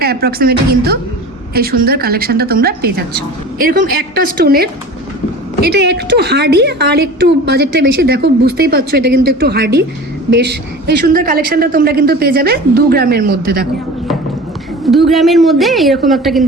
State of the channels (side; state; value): both; normal; correlation 0.37